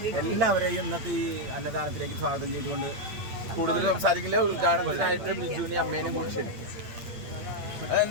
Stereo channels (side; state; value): left; late; 8.6 ms